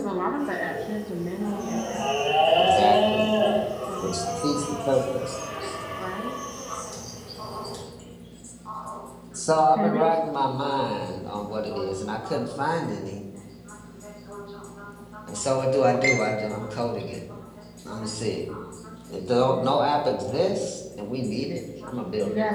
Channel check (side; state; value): both; identical; correlation 1.00